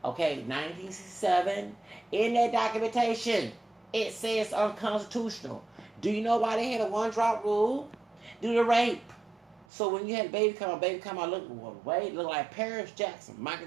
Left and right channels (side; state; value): left; drops out; at 9.7 s